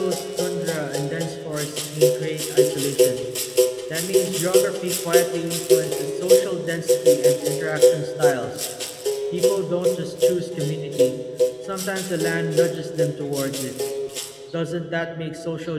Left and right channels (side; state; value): both; identical; correlation 1.00